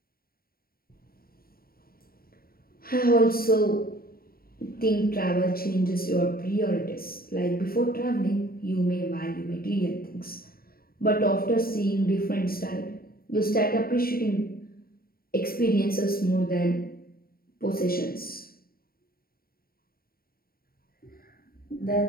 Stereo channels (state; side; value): late; right; 0.43 ms